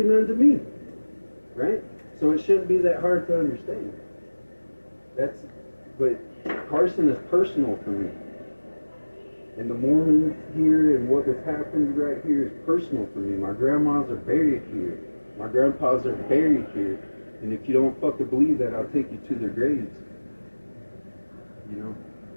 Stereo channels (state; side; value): inverted; both; correlation -1.00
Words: nothing to me. Right? So it shouldn't be that hard to understand. But Carson is personal for me. And the Mormons here and what has happened right here is personal for me. My grandmas are buried here. My grandpas are buried here. And if you don't fucking believe that, I'll take you to their graves. You know?